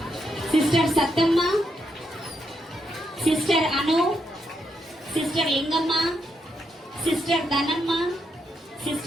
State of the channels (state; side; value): normal; both; correlation 0.80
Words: sister Sattamma, sister Anu, sister Lingamma, sister Dhanamma,